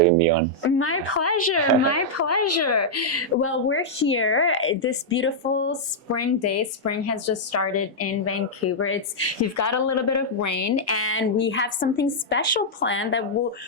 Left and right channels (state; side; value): normal; both; correlation -0.07